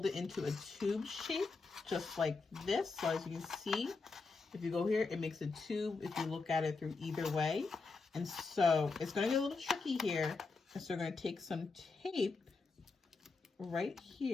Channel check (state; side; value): quieter; right; 4.2 dB